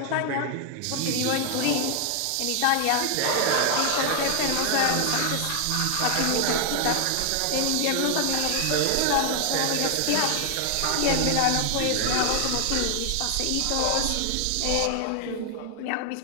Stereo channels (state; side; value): different; both; correlation 0.00